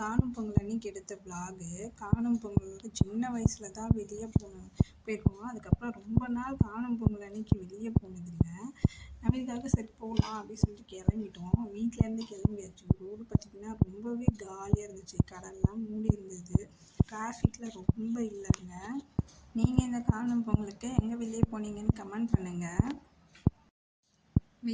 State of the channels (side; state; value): both; identical; correlation 1.00